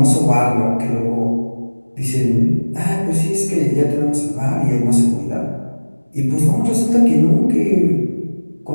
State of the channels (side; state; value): both; inverted; correlation -1.00